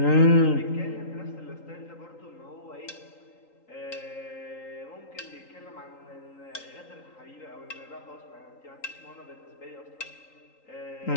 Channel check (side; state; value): right; late; 3.8 ms